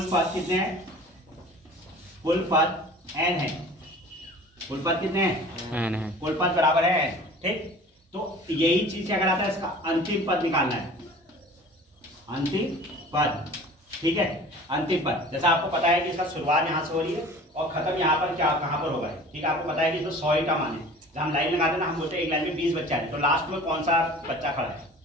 पद कितने हैं, कुल पद n है, कुल पद कितने हैं, n है, कुल पद बराबर है n, ठीक। तो यही चीज क्या कराता है, इसका अंतिम पद निकालना है, अंतिम पद, ठीक है। अंतिम पद, जैसा आपको पता है कि इसका शुरुआत यहाँ से हो रही है और खत्म यहाँ पर क्या कहाँ पर होगा, ठीक है। आपको पता है कि इसमें 100 का मान है, जब हम लाइन लगाते हैं ना, हम बोलते हैं एक लाइन में 20 बच्चे आए, तो लास्ट में कौन सा बच्चा खड़ा है,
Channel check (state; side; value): normal; both; correlation 0.43